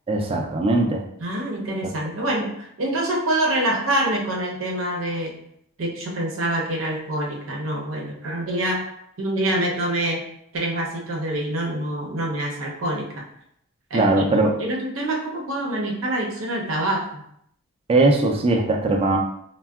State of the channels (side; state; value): both; normal; correlation 0.27